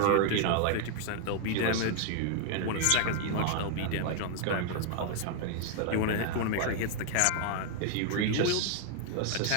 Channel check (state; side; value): different; both; correlation 0.00